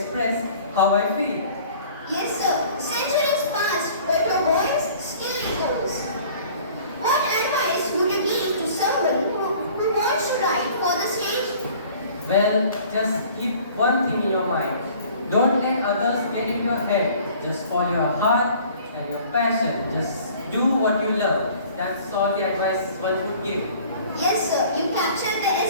how I feel. Yes, sir. Centuries passed, but your voice still echoes. What advice would you give to someone who wants to write for the stage? Well, just keep one thing in your mind. Don't let others get in your head. Just follow your heart and your passion. Just do what you love. That's all the advice one would give. Yes, sir. You captured the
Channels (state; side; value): inverted; both; correlation -0.50